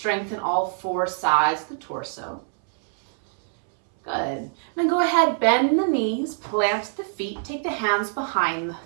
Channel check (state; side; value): silent; left; 63 dB below the other